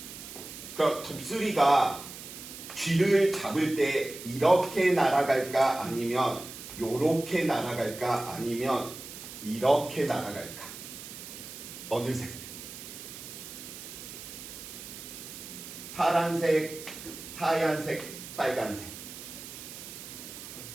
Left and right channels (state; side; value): noise; right; hiss, 12 dB below the sound